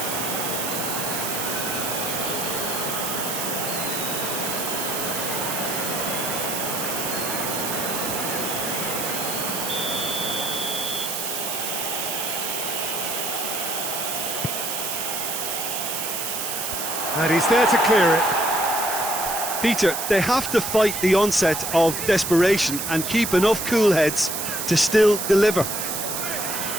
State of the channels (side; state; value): right; noise; hiss, 3 dB below the sound